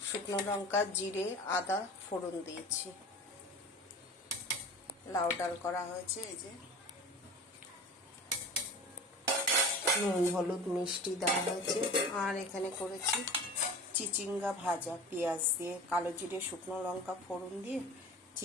শুকনো লঙ্কা, জিরে, আদা ফোড়ন দিয়েছি। লাউ ডাল করা হয়েছে। এই যে নুন হলুদ মিষ্টি দেওয়া হয়েছে। আর এখানে করেছি চিচিঙ্গা ভাজা, পেঁয়াজ দিয়ে, কালো জিরে শুকনো লঙ্কা ফোড়ন দিয়ে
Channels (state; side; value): normal; both; correlation 0.37